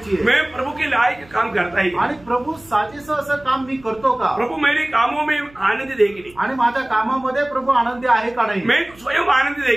आहे। मैं प्रभु के लायक काम करता है, आणि प्रभू साजेसं असं काम मी करतो का? प्रभु मेरे कामों में आनंद दे की नहीं, आणि माझ्या कामामध्ये प्रभू आनंदी आहे का नाही, मैं स्वयं आनंद दे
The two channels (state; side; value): noise; right; hum, 25 dB below the sound